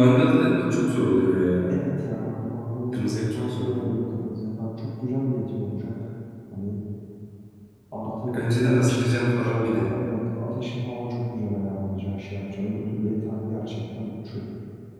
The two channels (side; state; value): both; identical; correlation 1.00